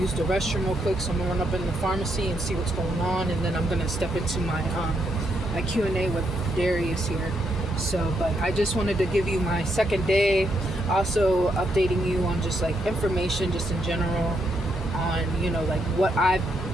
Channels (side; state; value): both; normal; correlation 0.78